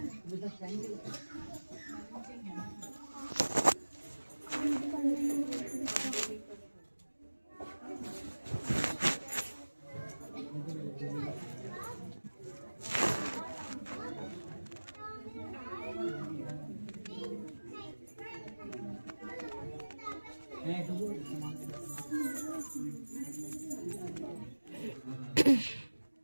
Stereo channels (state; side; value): inverted; both; correlation -1.00